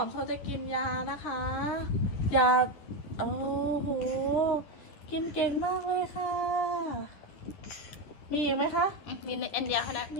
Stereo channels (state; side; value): late; right; 10 ms